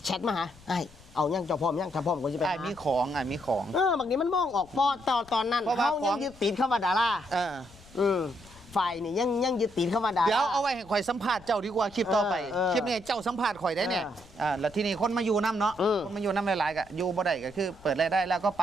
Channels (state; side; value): noise; left; rumble, 24 dB below the sound